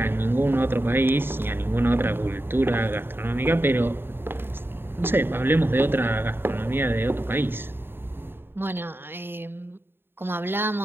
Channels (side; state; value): left; late; 0.11 ms